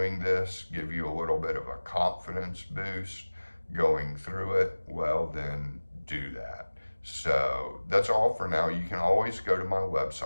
this, give you a little bit of a confidence boost going through it, well, then do that. So that's all for now. You can always go to my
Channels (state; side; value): inverted; both; correlation -1.00